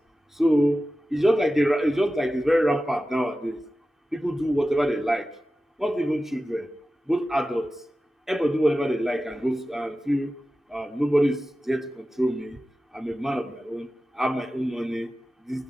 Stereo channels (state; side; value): normal; both; correlation 0.94